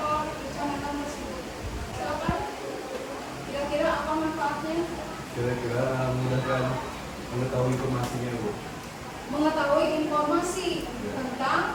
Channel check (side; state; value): both; identical; correlation 1.00